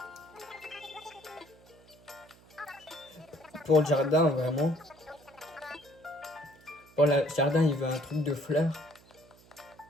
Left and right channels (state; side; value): noise; right; hum, 26 dB below the sound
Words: Pour le jardin, vraiment. Pour le jardin, il veut un truc de fleurs.